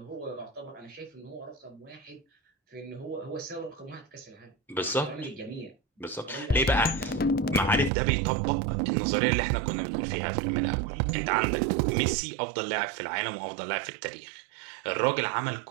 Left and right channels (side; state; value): left; drops out; at 7.9 s